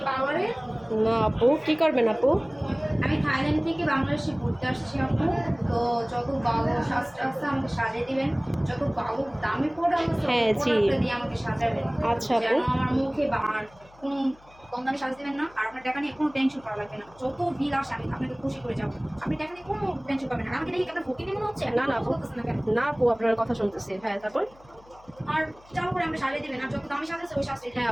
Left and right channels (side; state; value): left; noise; hum, 26 dB below the sound